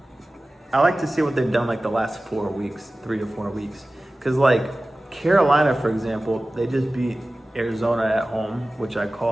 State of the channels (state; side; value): normal; both; correlation 0.97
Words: I like to see what they've done like the last 4 weeks, 3 to 4 weeks. Because like Carolina, for example, they just beat Arizona at home, which I